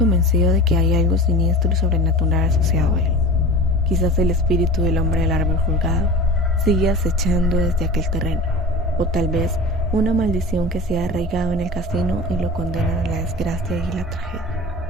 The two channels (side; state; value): both; normal; correlation 0.35